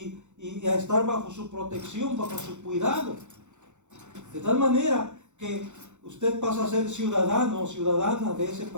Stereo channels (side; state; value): left; late; 0.84 ms